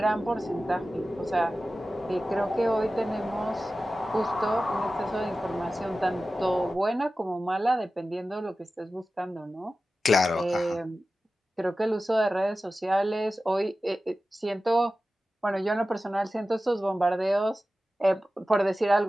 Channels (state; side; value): normal; both; correlation 0.95